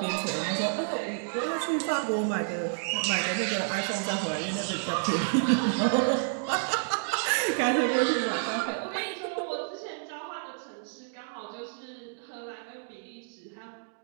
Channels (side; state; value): left; silent; digital silence